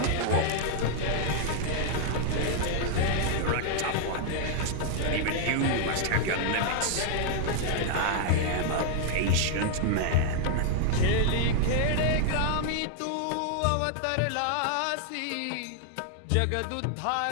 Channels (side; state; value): both; different; correlation -0.01